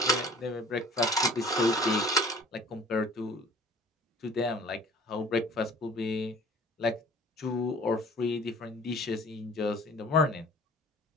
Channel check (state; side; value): normal; both; correlation 0.49